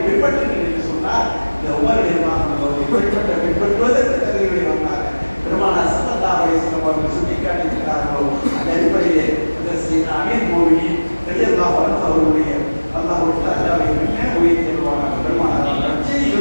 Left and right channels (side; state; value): both; inverted; correlation -1.00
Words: பின்பற்றுங்கள் என்று சொன்னார். இந்த உமர் பின்பற்றுவதற்கு தகுதிகளை வந்தாங்க. பெருமானார் ஸல்லல்லாஹு அலைஹி வஸல்லம் அவர்கள் சுட்டிக்காட்டியிருக்கிறார்களோ அந்த அடிப்படையிலே அமீர் மோமினின் ரலியல்லாஹு அன்ஹு அவருடைய அல்லாஹ்வுடைய தஆலாவை என்ன உயர்த்தி வருவாங்க. பெருமானாரால் நற்செய்தி